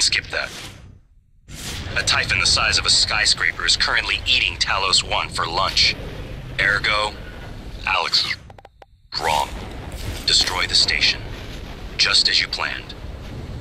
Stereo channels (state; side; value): identical; both; correlation 1.00